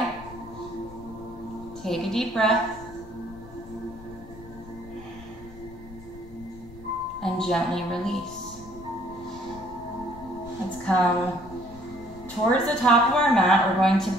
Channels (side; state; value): left; noise; rumble, 17 dB below the sound